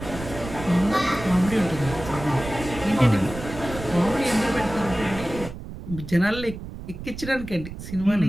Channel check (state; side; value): noise; right; rumble, 11 dB below the sound